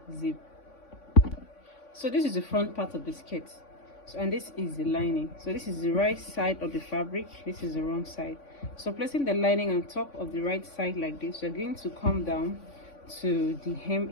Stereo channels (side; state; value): right; late; 3.5 ms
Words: zip. So this is the front part of the skirt, and this is the lining. So this is the right side of the fabric, this is the wrong side. So placing the lining on top of the right side like this, you're going to come down to the hem